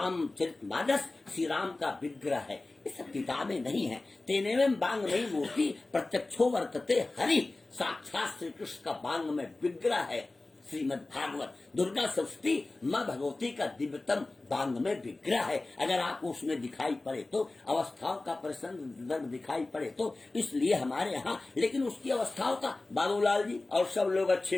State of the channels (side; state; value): right; quieter; 3.1 dB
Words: श्री राम का विग्रह है। ये सब किताबें नहीं है। तेनेवं वाङ्मयी मूर्ति प्रत्यक्षो वर्तते हरि, साक्षात श्री कृष्ण का वाङ्मय विग्रह है श्रीमद् भागवत। दुर्गा सप्तशती माँ भगवती का दिव्यतम वाङ्मय विग्रह है। अगर आपको उसमें दिखाई पड़े तो, अवस्थाओं का प्रसंग दिखाई पड़े तो, इसलिए हमारे यहाँ, लेकिन उसकी अवस्थाओं का बाबूलाल जी और सब लोग